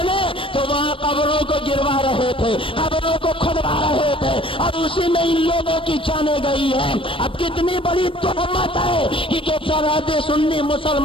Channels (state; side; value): late; right; 0.25 ms